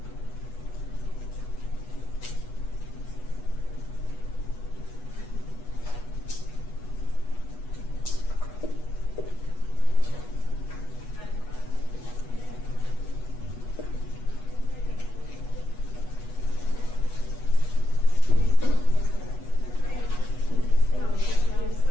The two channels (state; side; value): late; right; 8.2 ms